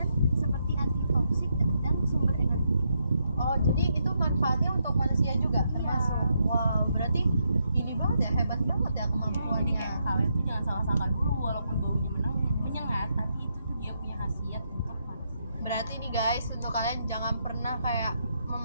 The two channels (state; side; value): inverted; both; correlation -0.79